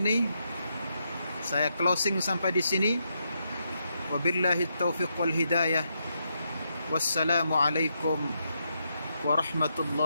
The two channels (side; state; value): both; inverted; correlation -0.81